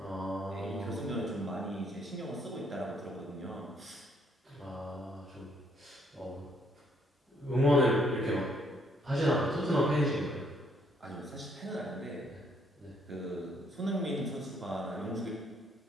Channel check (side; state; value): both; normal; correlation 0.69